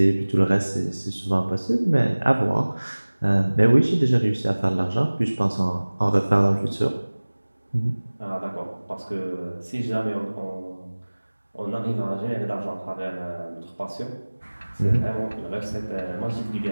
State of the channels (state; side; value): inverted; both; correlation -1.00